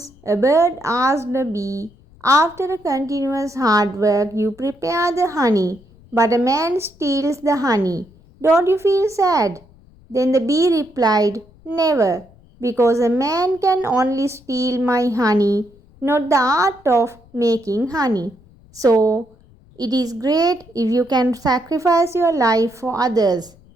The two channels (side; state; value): left; noise; rumble, 27 dB below the sound